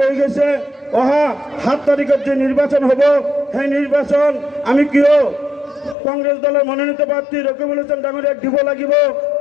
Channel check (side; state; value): right; drops out; at 6.0 s